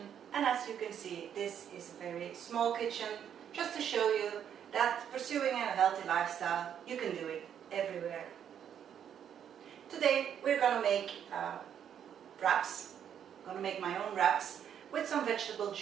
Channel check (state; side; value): quieter; left; 8.9 dB